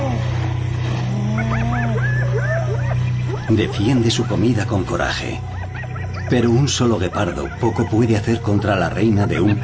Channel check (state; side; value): identical; both; correlation 1.00